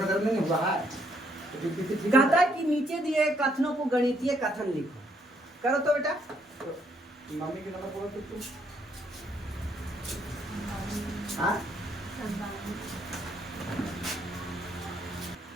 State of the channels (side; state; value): both; normal; correlation 0.70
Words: दर्द नहीं हो रहा है तो ठीक कहता है कि नीचे दिए कथनों को गणितीय कथन लिखो, करो तो बेटा। तो मम्मी के नंबर बोलो तो तुम हाँ